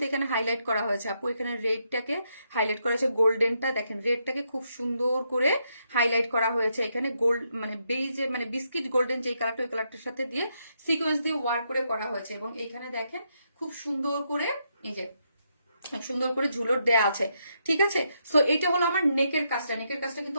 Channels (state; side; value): inverted; both; correlation -0.78